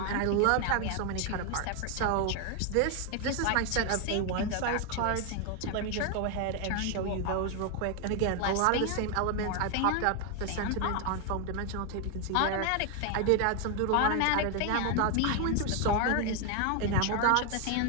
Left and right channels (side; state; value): both; different; correlation 0.01